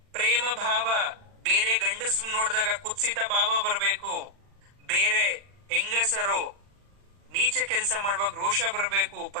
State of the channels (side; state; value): left; late; 40 ms